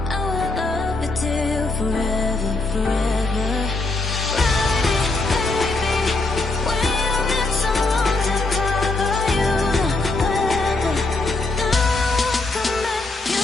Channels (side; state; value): right; quieter; 3.2 dB